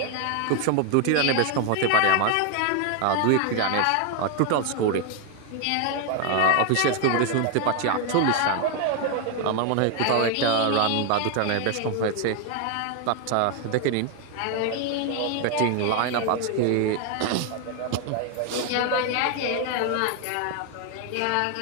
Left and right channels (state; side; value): different; both; correlation 0.00